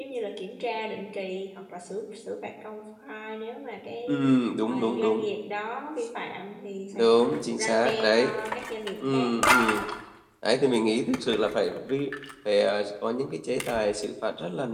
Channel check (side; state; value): both; identical; correlation 1.00